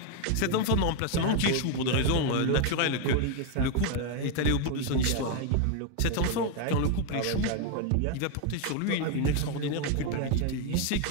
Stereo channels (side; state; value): both; different; correlation 0.01